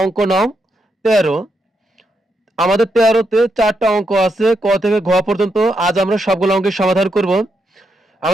অঙ্ক নং 13। আমাদের 13তে 4টা অঙ্ক আছে, ক থেকে ঘ পর্যন্ত। আজ আমরা সবগুলো অঙ্কের সমাধান করব।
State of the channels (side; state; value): both; normal; correlation 0.81